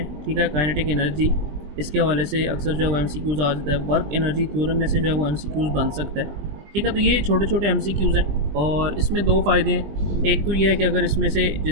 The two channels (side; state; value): left; late; 20 ms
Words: ठीक है, काइनेटिक एनर्जी, इसके हवाले से अक्सर जो है वो एमसीक्यूज़ आ जाता है। वर्क एनर्जी थ्योरम में से जो है वो एमसीक्यूज़ बन सकता है, ठीक है। तो ये छोटे छोटे एमसीक्यूज़ हैं और इसमें दो फ़ायदे हैं। एक तो ये है कि अगर इसमें से